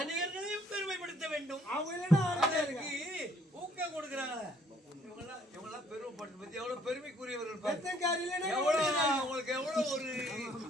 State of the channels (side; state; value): both; normal; correlation 0.63